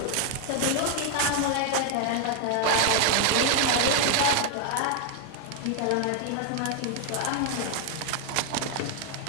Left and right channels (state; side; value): different; both; correlation 0.00